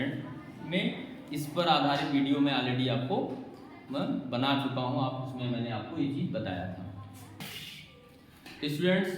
में। इस पर आधारित वीडियो में ऑलरेडी आपको मैं बना चुका हूँ, आप उसमें मैंने आपको ये चीज़ बताया था। स्टूडेंट्स,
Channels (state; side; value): identical; both; correlation 1.00